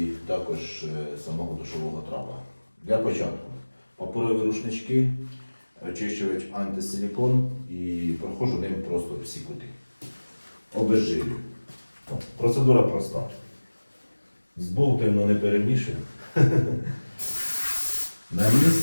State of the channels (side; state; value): both; inverted; correlation -1.00